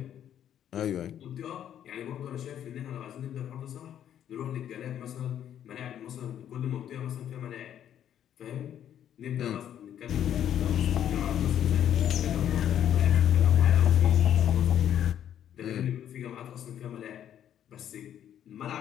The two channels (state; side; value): quieter; right; 10.2 dB